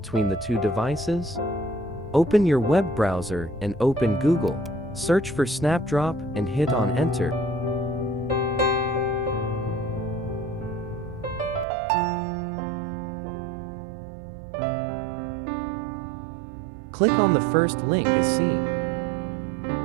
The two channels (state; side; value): drops out; left; at 11.7 s